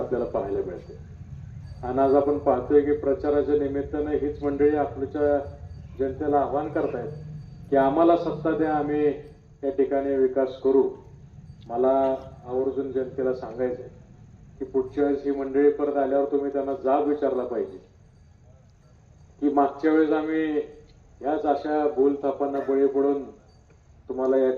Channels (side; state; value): both; identical; correlation 1.00